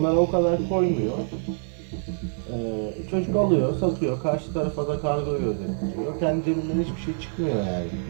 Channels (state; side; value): silent; left; digital silence